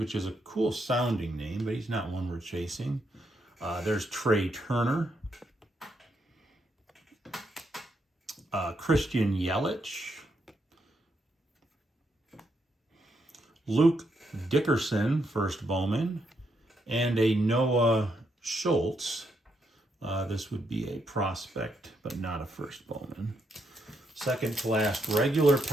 is a cool sounding name, but he's not one we're chasing. There's Trey Turner. Christian Yelich. Luke Dickerson, first Bowman, and a Noah Schultz. This would be a prospect, but not a first Bowman. Second to last regular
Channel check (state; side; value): normal; both; correlation 0.78